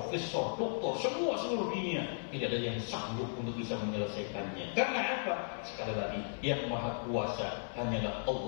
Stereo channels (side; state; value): right; silent; 54 dB below the other